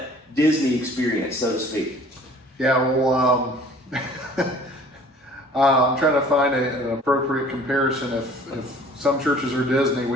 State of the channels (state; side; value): normal; both; correlation 0.51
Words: Disney experience, so to speak? Yeah, well, I'm trying to find an appropriate comparison. If some churches are Disney,